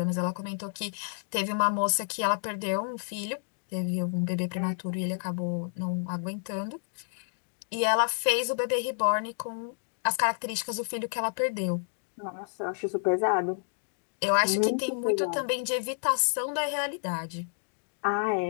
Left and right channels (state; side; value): silent; right; digital silence